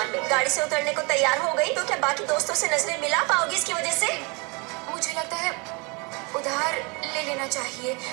में गाड़ी से उतरने को तैयार हो गई तो क्या बाकी दोस्तों से नजरें मिला पाओगी इसकी वजह से? मुझे लगता है उधार ले लेना चाहिए।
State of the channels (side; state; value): left; quieter; 29.9 dB